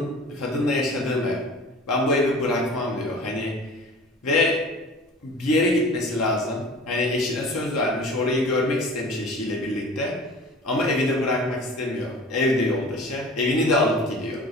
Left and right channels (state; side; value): normal; both; correlation 0.41